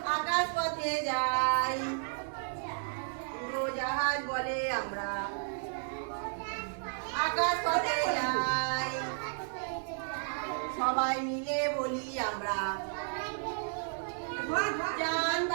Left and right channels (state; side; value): silent; left; digital silence